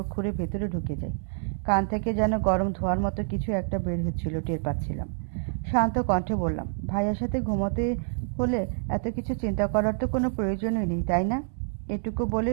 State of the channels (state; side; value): silent; left; digital silence